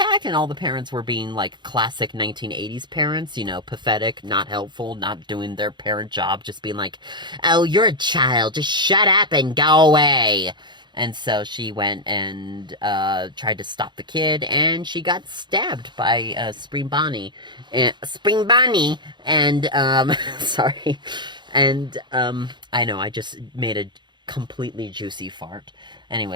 And all the parents were being like classic 1980s parents, you know, pathetic, not helpful, not doing their parent job, just being like, "Oh, you're a child. Just shut up and go away." And so she went and tried to stop the kid, and she got stabbed by Spring Bonnie. And, sorry. And, I know, I just made a completely juicy fart.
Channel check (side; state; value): left; late; 0.22 ms